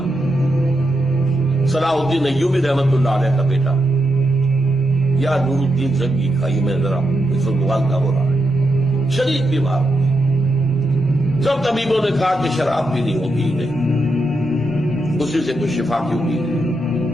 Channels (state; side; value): normal; both; correlation 0.84